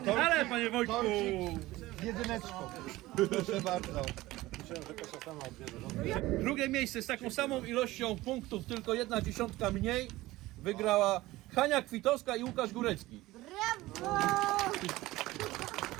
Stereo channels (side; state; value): left; quieter; 18.1 dB